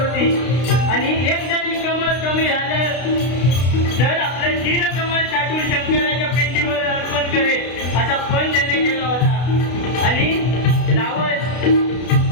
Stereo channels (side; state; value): right; late; 32 ms